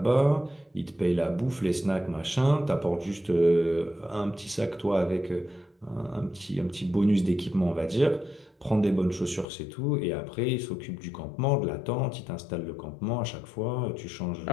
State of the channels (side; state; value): right; drops out; at 9.5 s